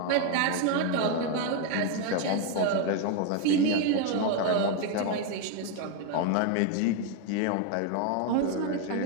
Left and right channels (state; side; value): different; both; correlation 0.01